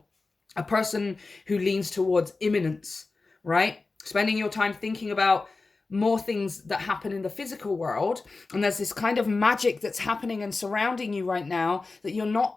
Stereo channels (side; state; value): right; quieter; 3.8 dB